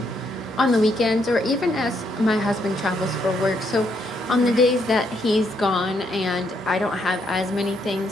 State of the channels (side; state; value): both; normal; correlation 0.74